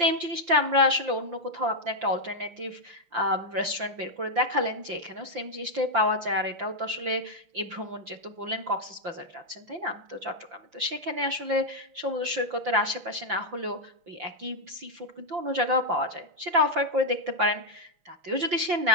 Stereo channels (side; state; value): left; late; 5.8 ms